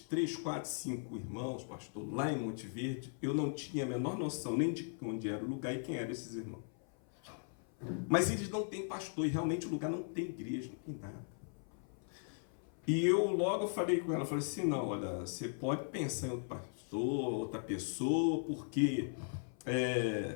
4, 5 irmãos, pastor, lá em Monte Verde. Eu não tinha a menor noção nem de onde era o lugar e quem eram esses irmãos. Mas eles não têm pastor, e realmente o lugar não tem igreja, não tem nada. E eu logo falei com ela, falei assim: não, olha, você pode pensar em outro pastor, outra pessoa, porque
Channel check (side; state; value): right; silent; 52 dB below the other